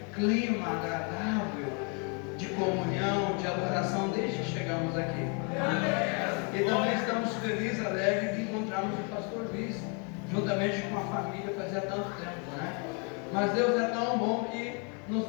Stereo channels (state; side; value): quieter; right; 35.9 dB